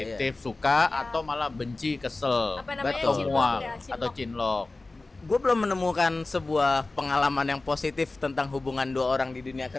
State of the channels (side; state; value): right; quieter; 3.3 dB